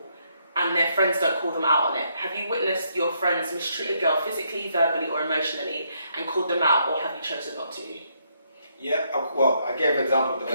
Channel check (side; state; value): both; inverted; correlation -0.74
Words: and their friends don't call them out on it. Have you witnessed your friends mistreat a girl physically, verbally, or emotionally, and called them out, or have you chosen not to? Yeah, well, I gave an example of the